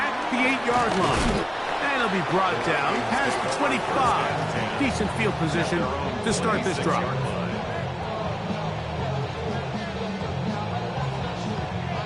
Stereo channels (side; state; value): both; identical; correlation 1.00